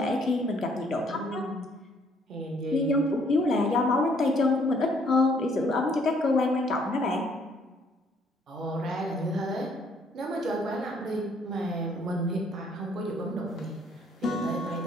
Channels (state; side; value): normal; both; correlation 0.64